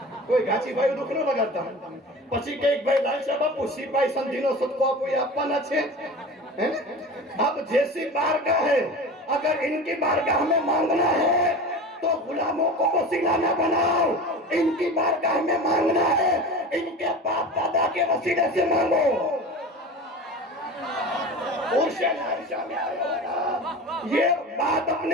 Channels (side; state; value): both; normal; correlation 0.32